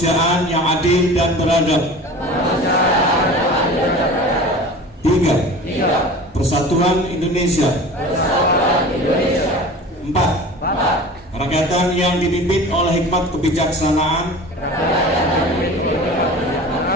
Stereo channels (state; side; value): normal; both; correlation 0.38